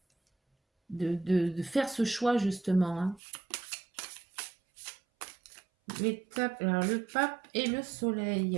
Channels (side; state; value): left; drops out; at 3.2 s